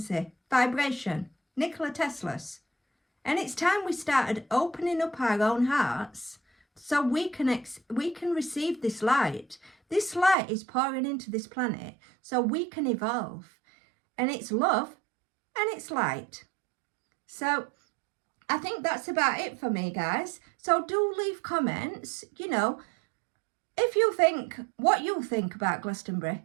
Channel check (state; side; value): drops out; left; at 10.4 s